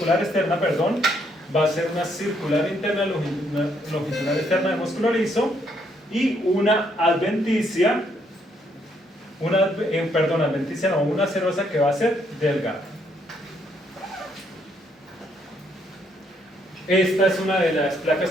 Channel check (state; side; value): normal; both; correlation 0.71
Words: externa, perdón, va a ser una circular interna, longitudinal externa de músculo liso y una adventicia, una serosa que va a ser delgada. Esta es una de las placas